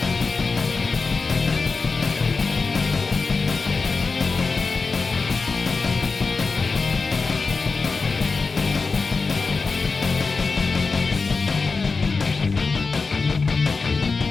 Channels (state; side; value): quieter; right; 4.3 dB